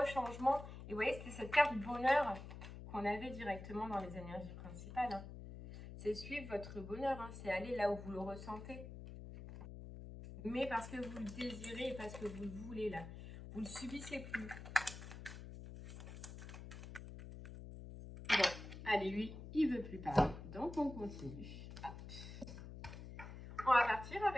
changement. Et vous voyez, c'était cette carte bonheur qu'on avait directement dans les énergies principales. Hein. C'est suivre votre bonheur, hein. C'est aller là où vous le ressentez. Mais parce que vous le désirez et parce que vous le voulez là. Vous ne le subissez plus. Bon, allez, lui, il ne veut plus parler. Donc, on continue. Hop. On va partir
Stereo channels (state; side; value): noise; left; hum, 11 dB below the sound